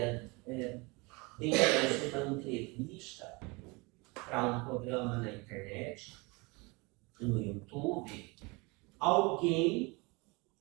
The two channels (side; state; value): left; quieter; 26.8 dB